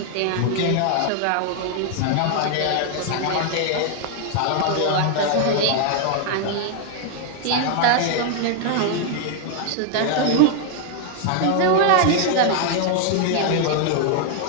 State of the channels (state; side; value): different; both; correlation 0.00